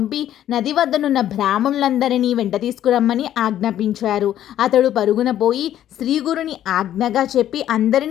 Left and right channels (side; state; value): right; quieter; 11.6 dB